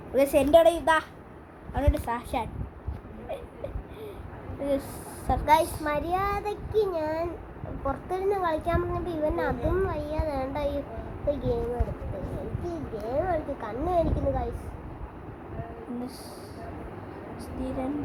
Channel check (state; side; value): identical; both; correlation 1.00